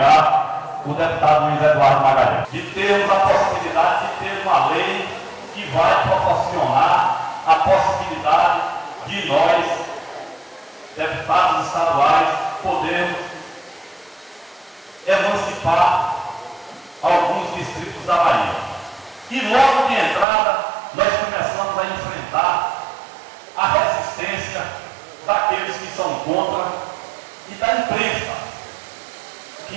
o deputado Luiz Eduardo Magalhães. De termos a possibilidade de ter uma lei que vai proporcionar a possibilidade de nós, deputados estaduais, podermos emancipar alguns distritos da Bahia. E logo de entrada, nós começamos a enfrentar a resistência daqueles que são contra e da imprensa,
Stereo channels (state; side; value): drops out; left; at 20.2 s